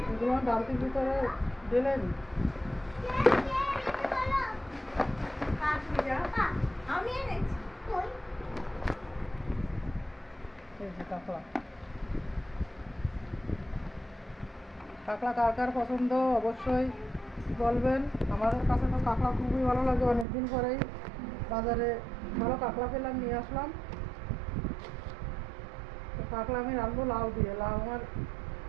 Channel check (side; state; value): left; drops out; at 20.2 s